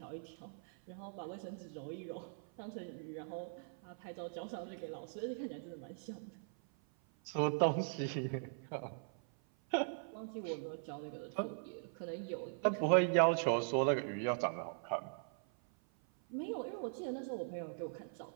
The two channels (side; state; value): left; silent; 51 dB below the other